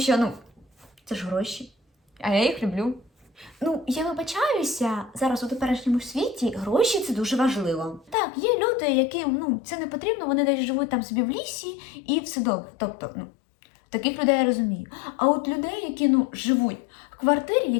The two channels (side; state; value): right; drops out; at 8.2 s